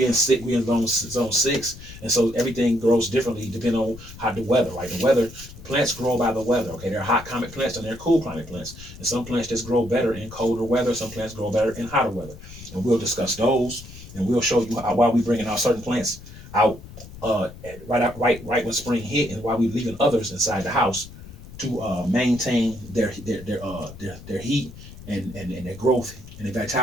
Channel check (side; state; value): left; noise; rumble, 16 dB below the sound